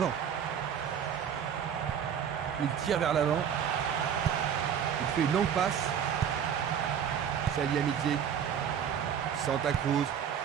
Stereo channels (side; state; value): left; quieter; 8.4 dB